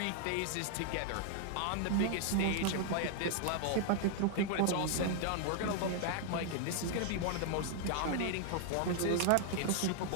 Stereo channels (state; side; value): different; both; correlation 0.00